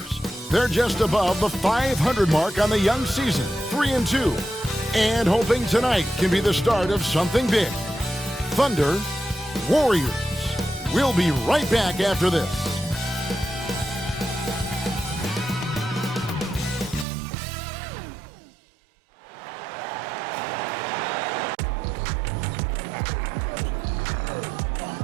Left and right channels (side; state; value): left; drops out; at 17.1 s